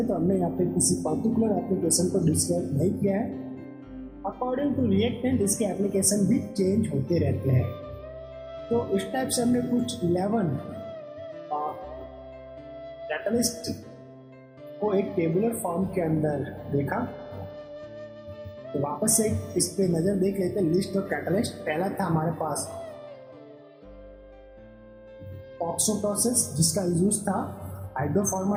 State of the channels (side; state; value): both; identical; correlation 1.00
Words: तो हमने यहाँ पे किसी पर्टिकुलर एप्लीकेशन को डिस्क्राइब नहीं किया है। अकॉर्डिंग टू रिएक्टेंट इसके एप्लीकेशन भी चेंज होते रहते हैं। तो इस टाइप से हमने कुछ 11 कैटालिस्ट को एक टेबुलर फॉर्म के अंदर देखा। तो वापस से इस पे नजर देख लेते हैं लिस्ट ऑफ कैटालिस्ट। पहला था हमारे पास ऑक्सो प्रोसेस, जिसका यूज था